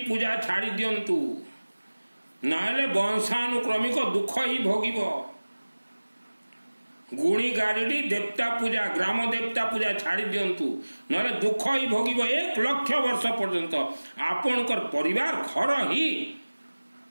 छाड़ी दियंतु, नाले वंशानुक्रमिक दुख ही भोगिब। गुणी गारिडी देवता पूजा, ग्राम देवता पूजा छाड़ी दियंतु, नाले दुख ही भोगिब। 1 लक्ष वर्ष पर्यंत आपणकर परिवार घर ही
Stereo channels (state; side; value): inverted; both; correlation -1.00